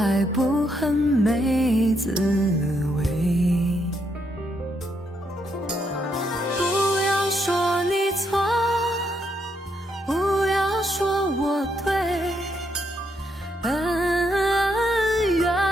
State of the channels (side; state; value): both; normal; correlation 0.77